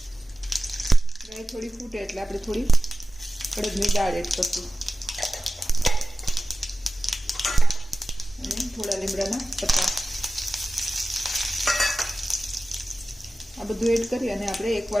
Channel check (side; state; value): both; normal; correlation 0.95